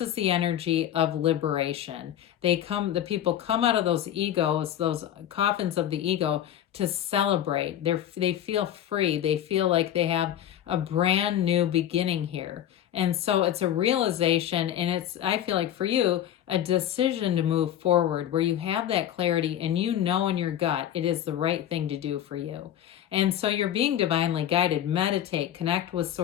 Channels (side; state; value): right; quieter; 11.2 dB